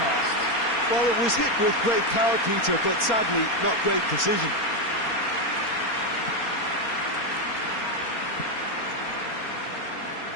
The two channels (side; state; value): right; late; 4.3 ms